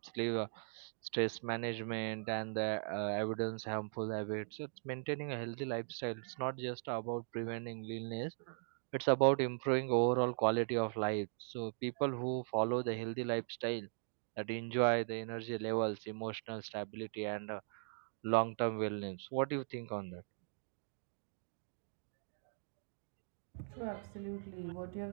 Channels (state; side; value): silent; left; digital silence